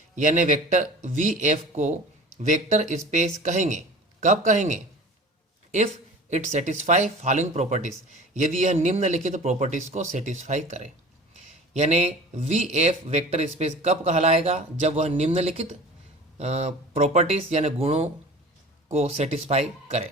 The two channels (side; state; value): both; normal; correlation 0.40